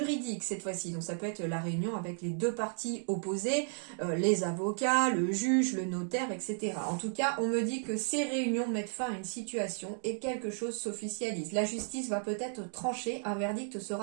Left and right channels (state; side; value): silent; left; 55 dB below the other